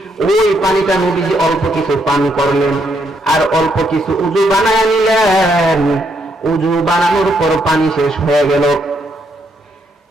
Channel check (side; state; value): both; normal; correlation 0.75